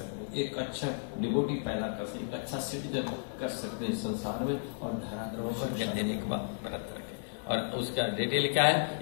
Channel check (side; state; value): right; silent; 56 dB below the other